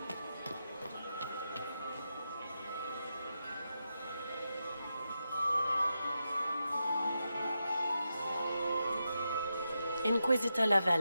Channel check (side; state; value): both; inverted; correlation -0.87